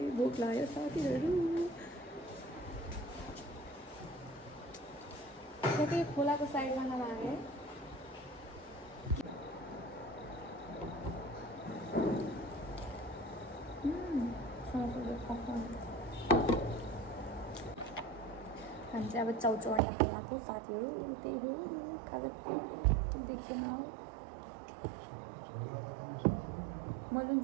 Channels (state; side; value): drops out; left; at 19.8 s